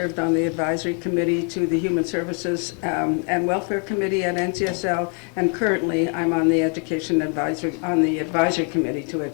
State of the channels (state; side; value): quieter; right; 38.3 dB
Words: on the advisory committee to the Human Services and Welfare Committee at NCSL, and currently I'm on the advisory committee to